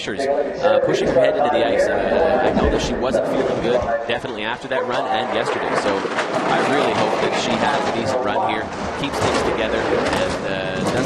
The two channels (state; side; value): identical; both; correlation 1.00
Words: pushing her head into the ice. I know that she wasn't feeling good, definitely after that run and yesterday. So I really hope that she has a decent run here, keeps things together, and